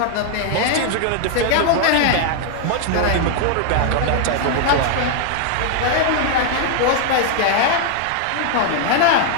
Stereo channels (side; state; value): both; different; correlation 0.00